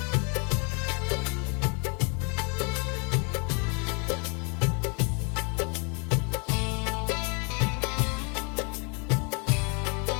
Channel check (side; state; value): right; quieter; 34.8 dB